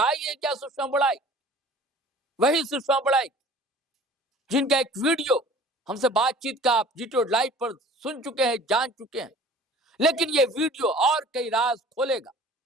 है क्या सुषमा बड़ाइक? वही सुषमा बड़ाइक जिनका एक वीडियो हमसे बातचीत का आप जीटो लाइव पर सुन चुके हैं, जान चुके हैं, लेकिन ये वीडियो और कई राज खोलेगा,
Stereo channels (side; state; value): both; normal; correlation 0.46